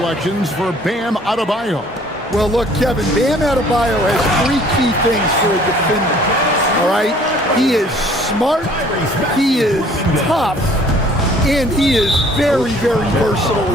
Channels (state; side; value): normal; both; correlation 0.56